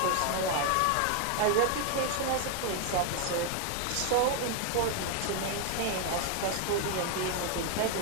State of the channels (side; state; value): both; different; correlation 0.01